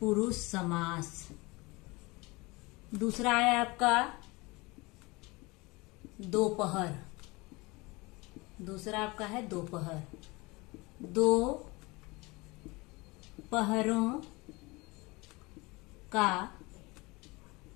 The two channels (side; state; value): right; quieter; 24.2 dB